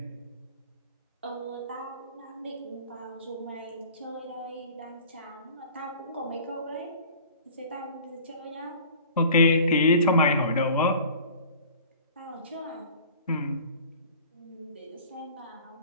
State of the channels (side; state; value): both; inverted; correlation -0.45